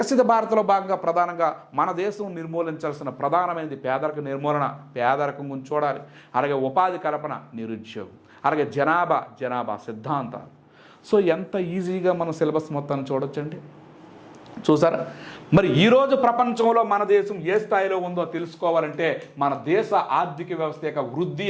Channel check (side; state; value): both; identical; correlation 1.00